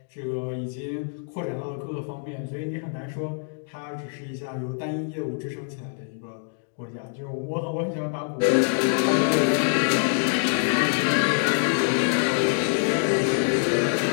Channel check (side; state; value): right; silent; 61 dB below the other